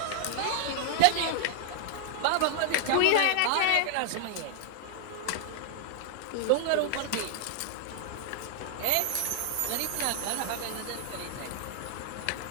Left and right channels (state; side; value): different; both; correlation -0.01